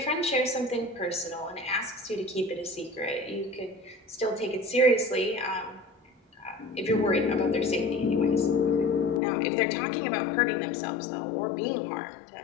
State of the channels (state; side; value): drops out; right; at 9.2 s